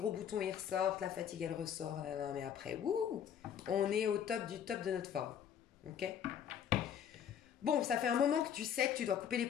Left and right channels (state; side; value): quieter; right; 8.8 dB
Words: boutons ils ressortent, la fatigue elle ressort, mais après, wouh, on est au top du top de notre forme. Ok? Bon, ça fait un moment que tu sais que tu dois couper les